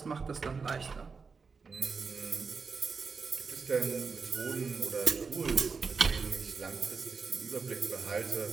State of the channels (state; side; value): quieter; left; 5.0 dB